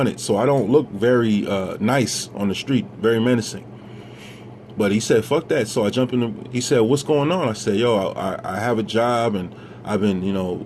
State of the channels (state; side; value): identical; both; correlation 1.00